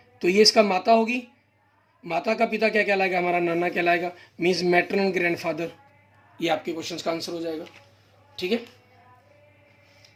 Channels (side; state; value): both; identical; correlation 1.00